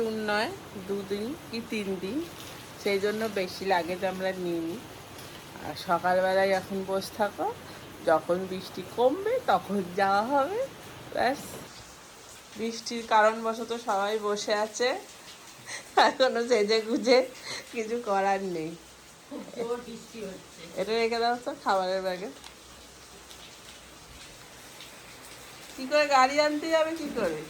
নয়, 2 দিন কি 3 দিন, সেই জন্য বেশি লাগেজ আমরা নিইনি। আর সকালবেলায় এখন বসে থাকো, যখন বৃষ্টি কমবে তখন যাওয়া হবে, ব্যাস। বৃষ্টির কারণবশত সবাই বসে আছে, এখনো সেজে গুজে কিছু করার নেই। এটা রেখে দাও তো খাবারের ব্যাগে। কি করে গাড়ি আনতে যাবে, কি করে?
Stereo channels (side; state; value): both; identical; correlation 1.00